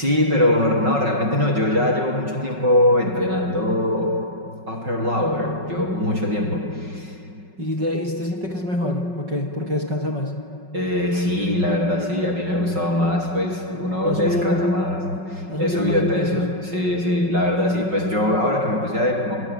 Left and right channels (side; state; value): left; late; 5.4 ms